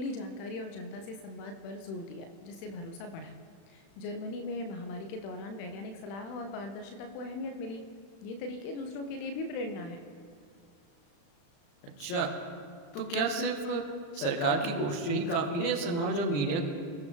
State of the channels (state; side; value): late; right; 35 ms